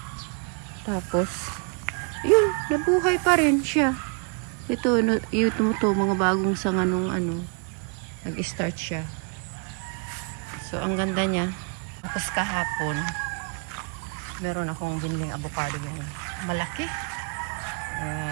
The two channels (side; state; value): left; quieter; 36.6 dB